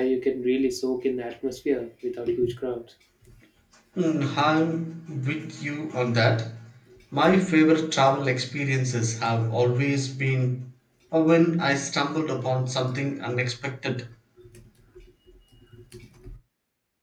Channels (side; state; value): both; identical; correlation 1.00